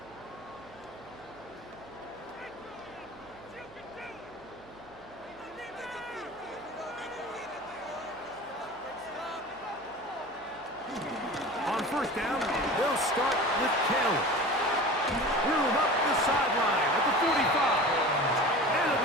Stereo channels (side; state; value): right; noise; hum, 25 dB below the sound